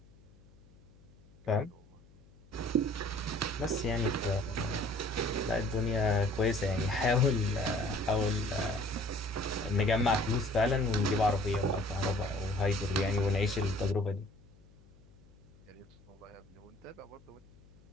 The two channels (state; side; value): noise; left; hum, 26 dB below the sound